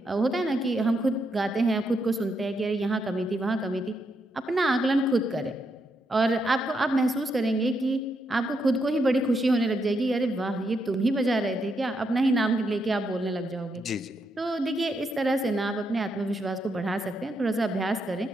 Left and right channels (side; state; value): both; normal; correlation 0.80